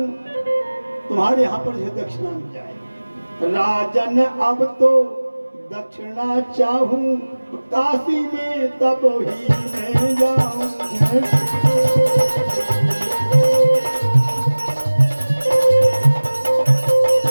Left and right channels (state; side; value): inverted; both; correlation -1.00